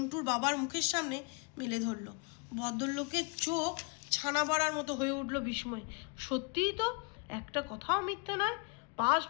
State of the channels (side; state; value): right; quieter; 32.6 dB